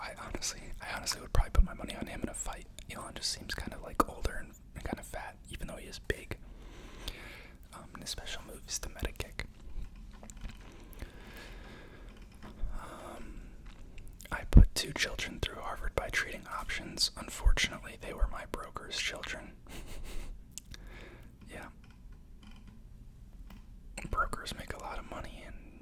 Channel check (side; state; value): both; identical; correlation 1.00